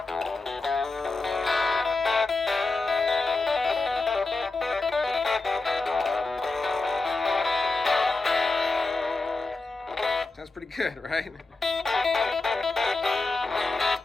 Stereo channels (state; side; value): quieter; right; 3.6 dB